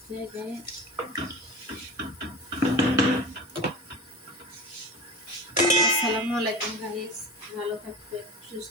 যায়। আসসালামু আলাইকুম গাইস, ভালো থাকবেন,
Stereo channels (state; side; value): normal; both; correlation 0.31